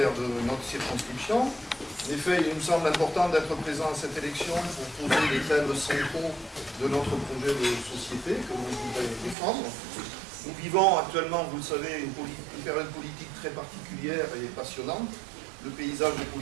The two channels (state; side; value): drops out; left; at 9.3 s